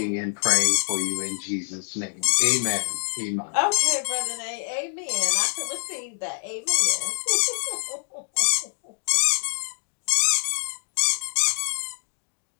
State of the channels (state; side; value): silent; right; 55 dB below the other